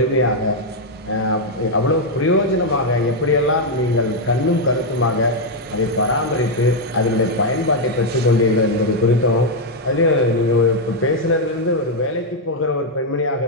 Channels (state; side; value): normal; both; correlation 0.00